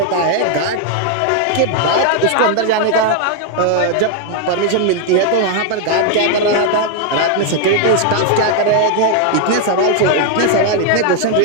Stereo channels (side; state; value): both; different; correlation 0.00